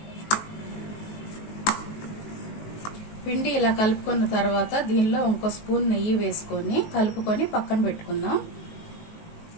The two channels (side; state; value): right; late; 19 ms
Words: పిండి ఇలా కలుపుకున్న తర్వాత దీనిలో 1 స్పూన్ నెయ్యి వేసుకొని కలుపుకొని పక్కన పెట్టుకుందాం.